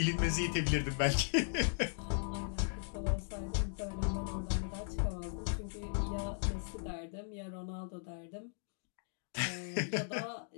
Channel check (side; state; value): right; silent; digital silence